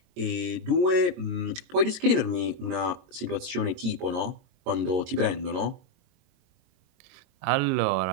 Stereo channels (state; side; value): late; left; 22 ms